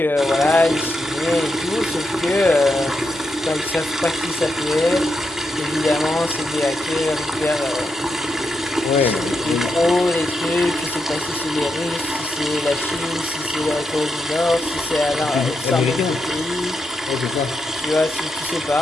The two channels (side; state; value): both; normal; correlation 0.84